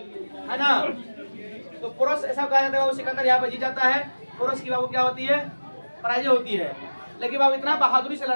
है ना। तो पोरस ऐसा कहा जाता है बाबू, सिकंदर यहाँ पे जीत जाता है, पोरस की बाबू क्या होती है? पराजय होती है। लेकिन बाबू इतना बहादुरी से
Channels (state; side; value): inverted; both; correlation -1.00